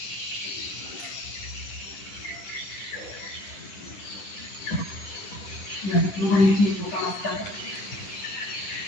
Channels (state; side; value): late; right; 9.9 ms